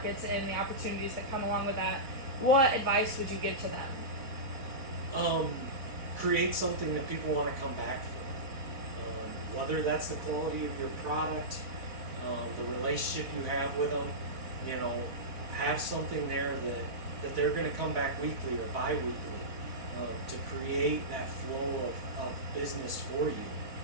and the opportunities that come along with that? What advice would you give to them? Create something that people want to come back for. Whether that's the quality of your product, the relationship you have with them, have something there that they're going to come back weekly or bi-weekly, to create that flow of business for you.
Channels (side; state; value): left; late; 3.8 ms